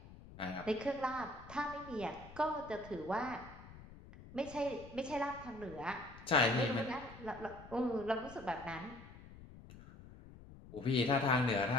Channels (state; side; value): noise; left; rumble, 17 dB below the sound